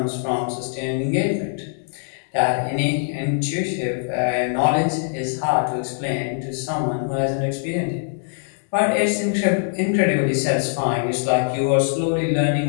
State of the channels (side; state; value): right; silent; digital silence